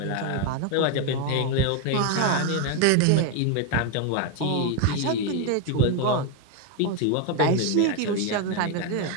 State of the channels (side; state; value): both; different; correlation 0.01